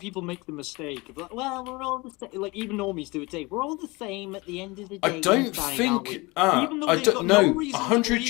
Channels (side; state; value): right; quieter; 24.4 dB